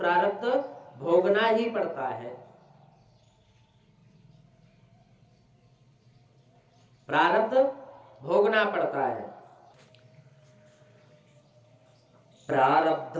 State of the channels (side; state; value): both; identical; correlation 1.00